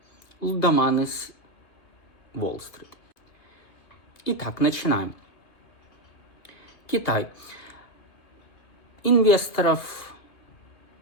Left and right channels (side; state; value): right; late; 2.5 ms